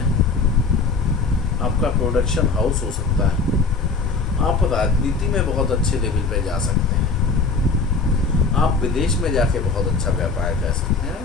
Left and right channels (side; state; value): right; quieter; 4.3 dB